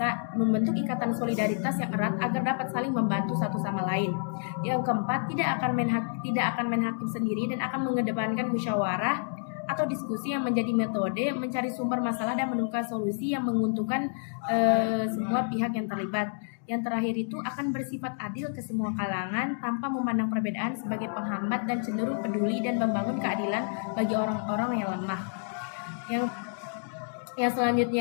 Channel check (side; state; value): right; silent; digital silence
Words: ikatan solidaritas yang erat agar dapat saling membantu satu sama lain. Yang keempat, tidak akan main hakim sendiri dan akan mengedepankan musyawarah atau diskusi yang menjadi metode mencari sumber masalah dan menemukan solusi yang menguntungkan semua pihak yang terlibat. Yang terakhir itu akan bersifat adil ke semua kalangan tanpa memandang perbedaan sebagai penghambat dan cenderung peduli dan membangun keadilan bagi orang-orang yang lemah. Yang